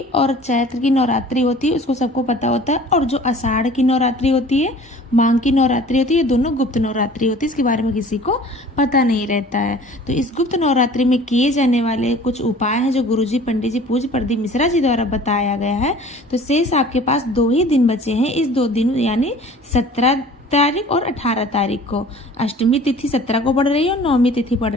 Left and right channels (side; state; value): both; normal; correlation 0.47